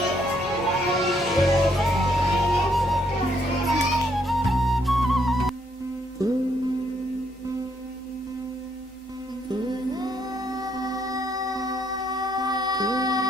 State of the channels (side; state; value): both; normal; correlation 0.72